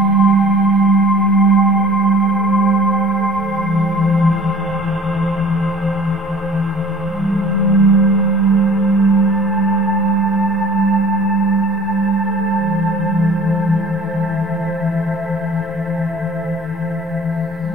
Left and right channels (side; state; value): both; normal; correlation 0.46